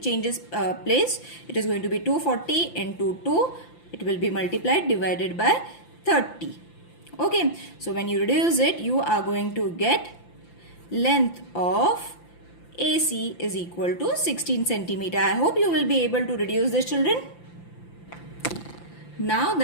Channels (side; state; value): right; late; 5.9 ms